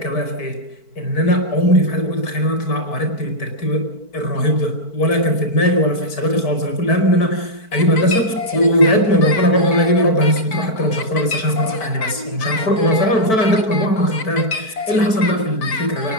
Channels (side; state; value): right; late; 4.5 ms